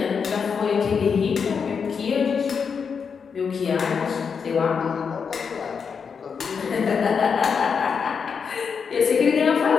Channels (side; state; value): right; quieter; 6.1 dB